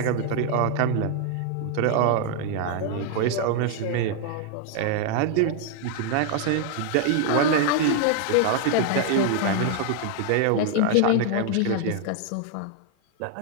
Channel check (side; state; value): both; different; correlation 0.00